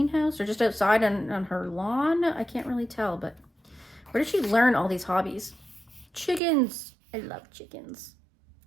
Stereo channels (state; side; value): drops out; left; at 6.4 s